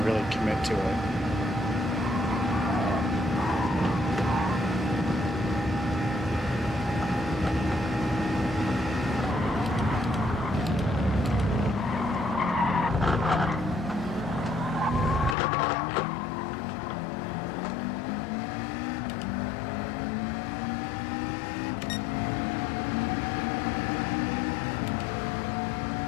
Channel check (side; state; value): right; drops out; at 15.4 s